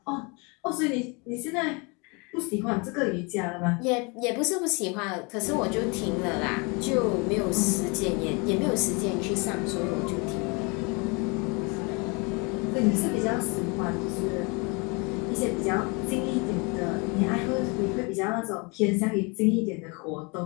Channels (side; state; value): right; quieter; 30.2 dB